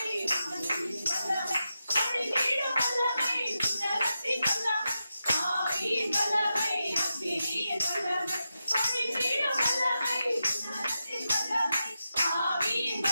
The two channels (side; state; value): both; inverted; correlation -0.89